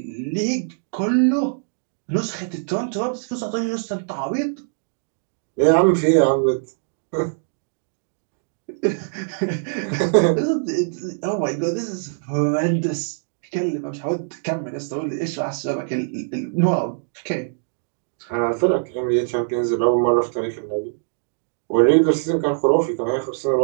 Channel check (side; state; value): left; silent; digital silence